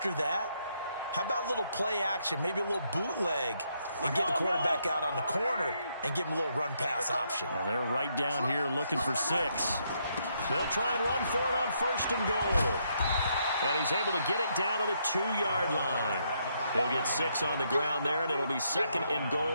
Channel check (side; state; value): both; inverted; correlation -0.75